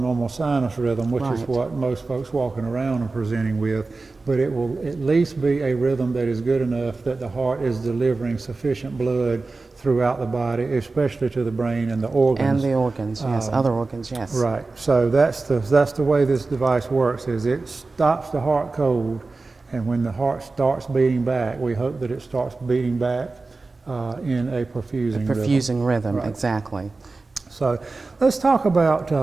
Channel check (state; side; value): quieter; left; 3.7 dB